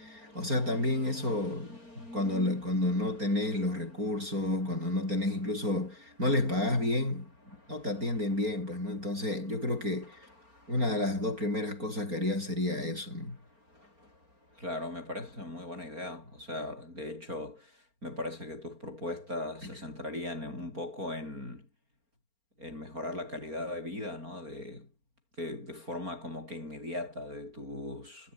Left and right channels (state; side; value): late; left; 4.4 ms